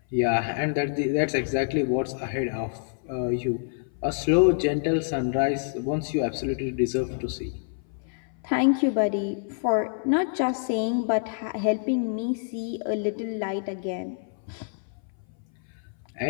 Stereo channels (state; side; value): silent; right; 58 dB below the other